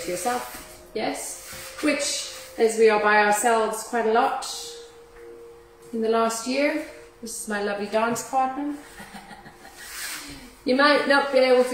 to yourself, yes? Which, as we are by ourselves quite a lot in the last year, this is my lovely dance partner. You might not be able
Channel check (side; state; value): both; identical; correlation 1.00